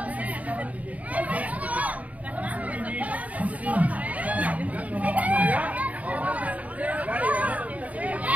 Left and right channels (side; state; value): left; late; 0.070 ms